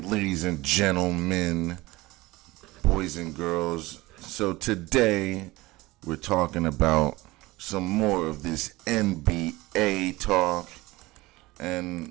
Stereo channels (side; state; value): left; quieter; 20.3 dB